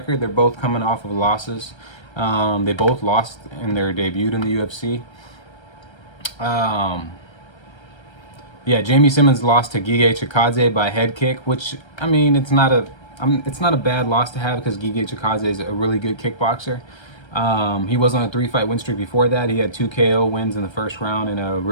They're both coming off of losses. They both lost in their debut in the UFC. Yeah, Jamie Simmons lost to Gige Chikadze by head kick, which I mean, it's not a bad loss to have because Gige Chikadze is a really good kickboxer. He was on a 3-fight win streak before that. He had 2 KO wins in the first round and a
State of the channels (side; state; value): right; late; 1.3 ms